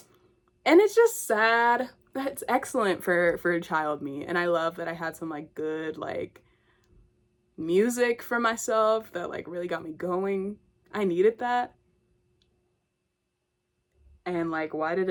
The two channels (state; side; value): identical; both; correlation 1.00